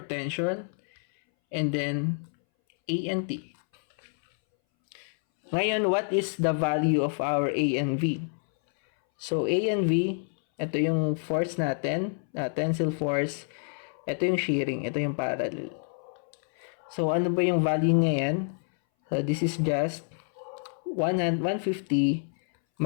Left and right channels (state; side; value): silent; right; 59 dB below the other